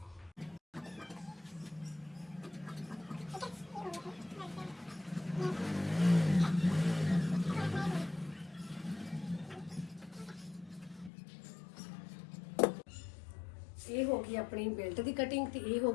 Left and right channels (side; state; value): right; drops out; at 11.1 s